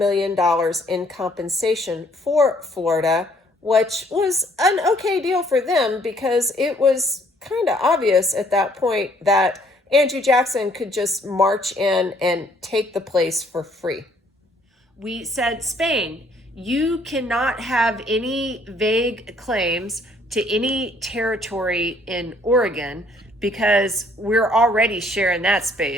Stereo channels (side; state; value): both; normal; correlation 0.63